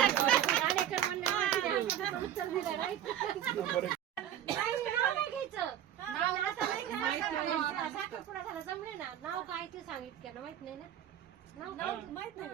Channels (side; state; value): left; quieter; 10.7 dB